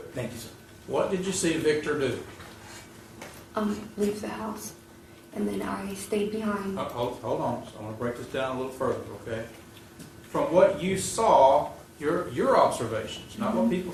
Thank you, sir. What did you see Victor do? Leave the house, and then I stayed behind. Hold on, so I want to break this down a little further, okay? From what you saw, your observations, not what people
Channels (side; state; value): both; identical; correlation 1.00